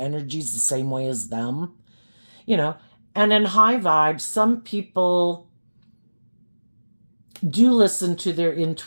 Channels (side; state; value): both; inverted; correlation -1.00